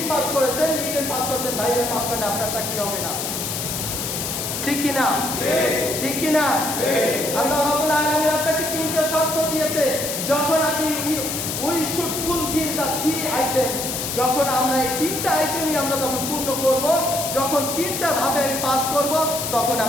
পাস করেছেন, রিটেন পাস করেছেন, ভাইয়ের পাস করেন, আপনার চাকরি হবে না, ঠিক কিনা? ঠিক কিনা? আল্লাহ রাব্বুল আলামিন আপনাকে তিনটা শর্ত দিয়েছে, যখন আপনি we should fulfil the three items. যখন আমরা এই তিনটা আইটেমই আমরা যখন পূর্ণ করব, যখন তিনটা ধাপে আমি পাস করব, তখন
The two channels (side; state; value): left; noise; hiss, 3 dB below the sound